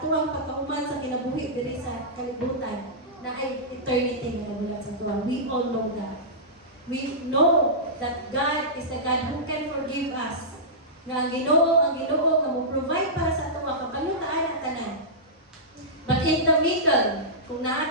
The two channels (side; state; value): both; normal; correlation -0.15